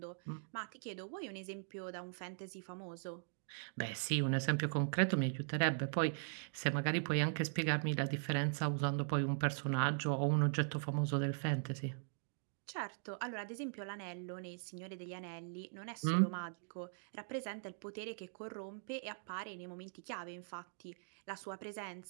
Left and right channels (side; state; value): left; silent; digital silence